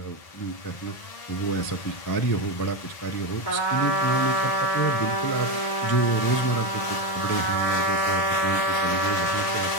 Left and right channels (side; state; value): right; late; 1.6 ms